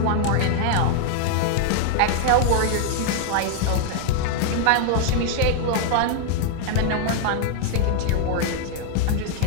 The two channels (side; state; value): both; different; correlation 0.00